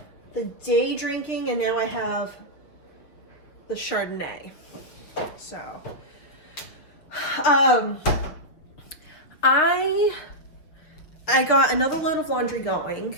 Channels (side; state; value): right; late; 6.3 ms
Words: the day drinking, and now I have the Chardonnay. So, I got another load of laundry going,